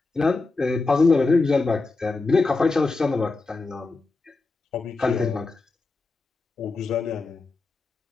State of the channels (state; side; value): quieter; right; 3.7 dB